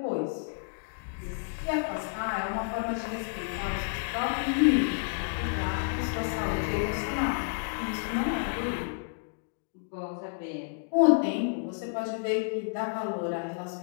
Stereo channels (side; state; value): right; silent; digital silence